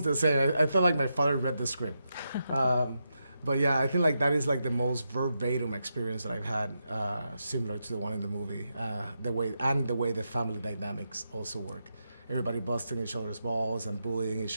the same. I felt like my father read the script. But yeah, I think like that is like the most verbatim experience that I've had, similar to the one in the movie. The way the family dynamics also work. Everybody busting each other's balls and bullying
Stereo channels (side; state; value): both; inverted; correlation -0.85